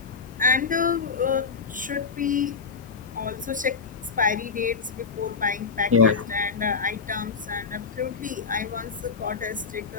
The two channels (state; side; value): quieter; right; 5.2 dB